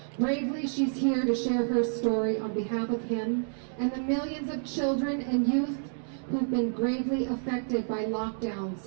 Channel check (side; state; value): left; silent; digital silence